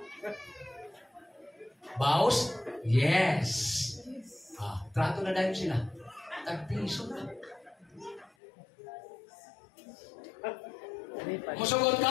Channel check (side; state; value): right; drops out; at 8.3 s